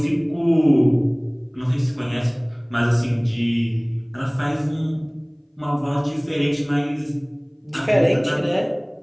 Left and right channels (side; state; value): both; identical; correlation 1.00